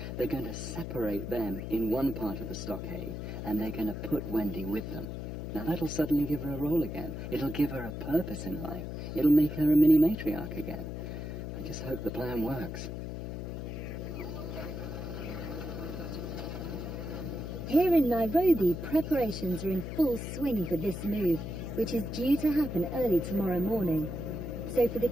they're going to separate them in one part of the stockade, and they're going to put Wendy with them. Now that'll suddenly give her a role again. It'll give her a purpose in life. It'll make her a mini matriarch again. I just hope the plan works. Here in Nairobi, preparations are in full swing for this move, which is due to happen early tomorrow morning. So for the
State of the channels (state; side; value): noise; left; hum, 6 dB below the sound